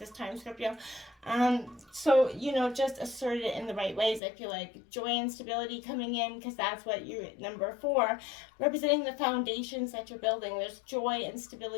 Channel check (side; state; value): right; drops out; at 4.2 s